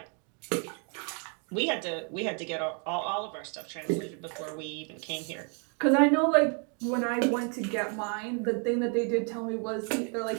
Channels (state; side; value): quieter; left; 38.8 dB